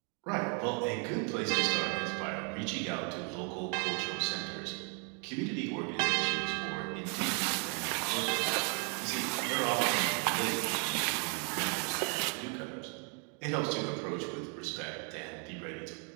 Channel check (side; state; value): left; quieter; 38.6 dB